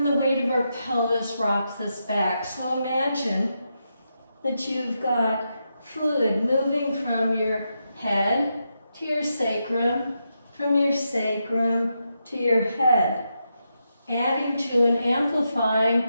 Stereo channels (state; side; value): inverted; both; correlation -0.85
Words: the weight of our pelvis rocks us back. So imagine that you've got fluid moving from your head to your sacrum, from your sacrum to your head, adding to and